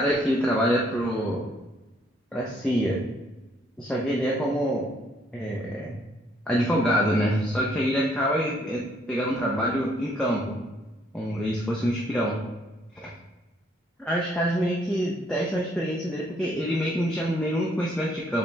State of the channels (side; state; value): both; normal; correlation 0.67